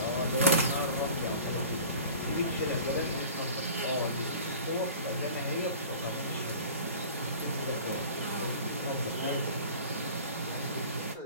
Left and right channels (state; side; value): inverted; both; correlation -0.42